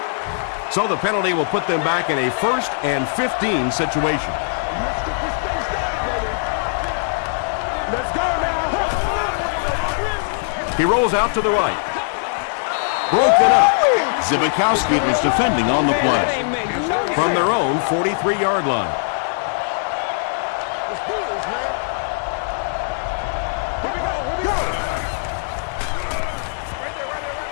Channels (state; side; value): silent; right; digital silence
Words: So the penalty will put them back in a 1st and 15 situation. He rolls out to the right. Broken up. Zibikowski was defending on the play. From their own 43-yard line.